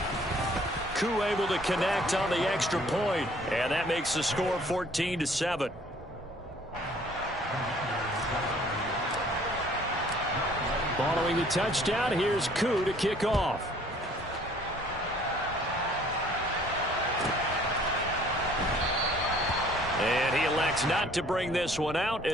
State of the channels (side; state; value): both; normal; correlation 0.56